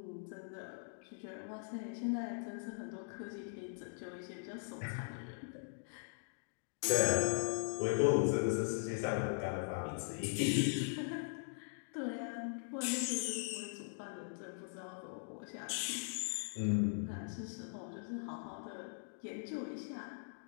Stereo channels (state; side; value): silent; right; digital silence